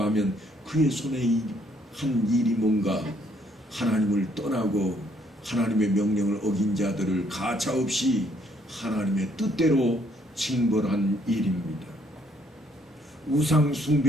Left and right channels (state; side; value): normal; both; correlation 0.67